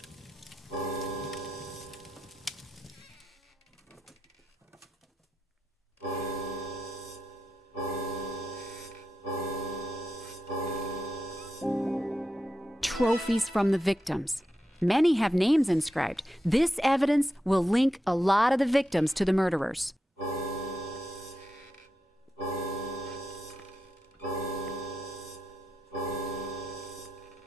Trophies from the victims. Many have names inscribed. This evidence will link a lot of the victims to the murderers.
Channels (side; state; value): both; normal; correlation 0.88